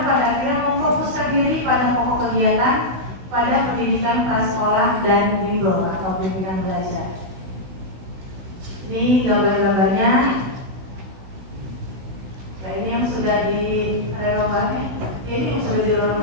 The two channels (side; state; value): left; late; 16 ms